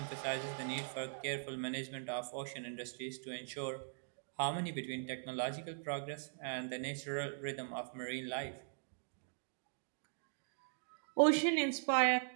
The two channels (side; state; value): left; silent; digital silence